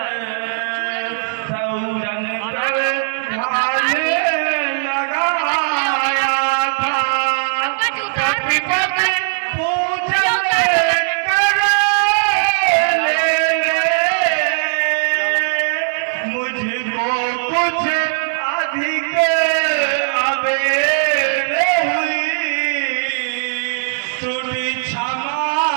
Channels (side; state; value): left; silent; 67 dB below the other